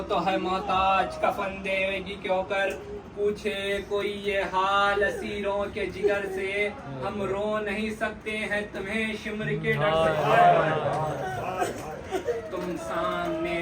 تو ہے محتاج کفن دیوے گی کیوں کر، پوچھے کوئی یہ حال اسیروں کے جگر سے، ہم رو نہیں سکتے ہیں تمہیں شمر کے ڈر سے، تم سامنے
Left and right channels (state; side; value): identical; both; correlation 1.00